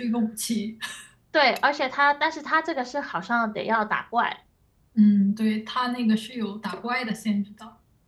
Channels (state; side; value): identical; both; correlation 1.00